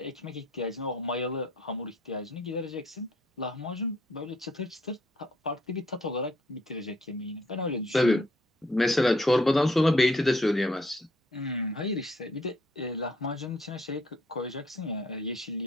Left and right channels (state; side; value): normal; both; correlation 0.65